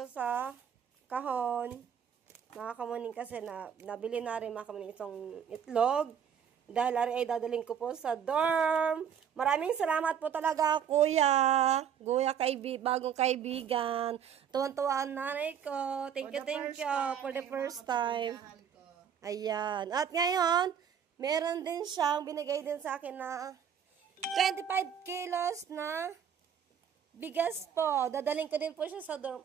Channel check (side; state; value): left; quieter; 8.2 dB